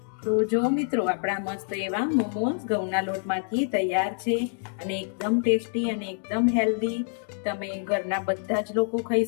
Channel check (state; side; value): silent; right; 60 dB below the other